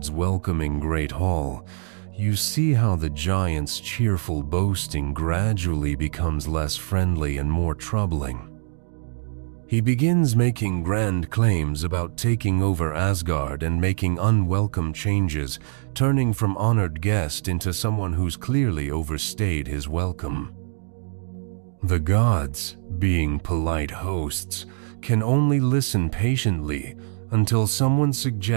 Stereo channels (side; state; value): left; silent; digital silence